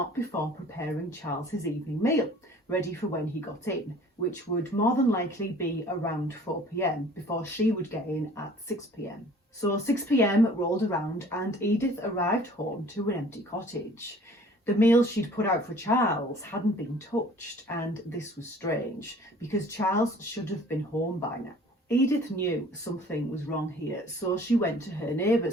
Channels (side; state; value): both; normal; correlation 0.51